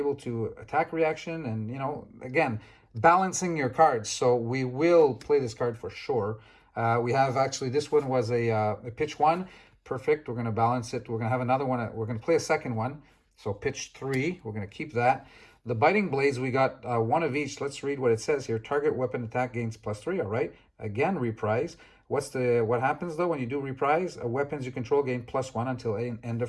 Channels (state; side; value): identical; both; correlation 1.00